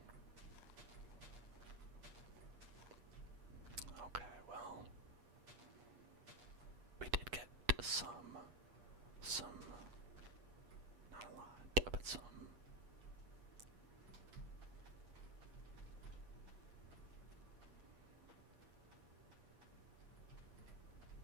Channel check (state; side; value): late; left; 8.4 ms